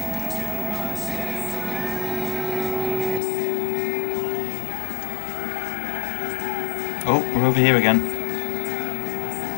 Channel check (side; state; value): right; drops out; at 3.2 s